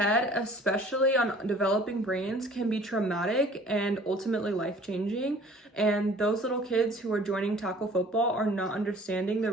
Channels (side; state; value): both; normal; correlation 0.51